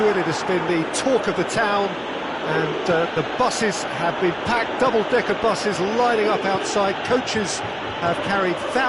it. It has been the talk of the town and the buses have been packed, double-decker buses lining up outside. Coaches have carried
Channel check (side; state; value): both; identical; correlation 1.00